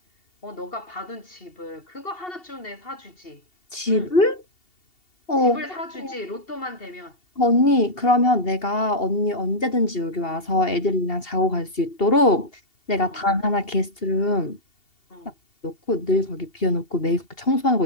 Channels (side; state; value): right; late; 2.7 ms